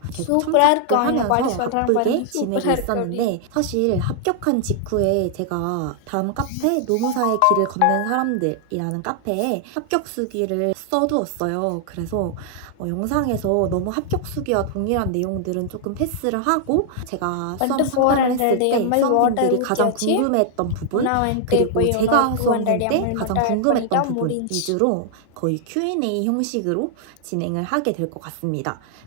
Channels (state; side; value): different; both; correlation 0.00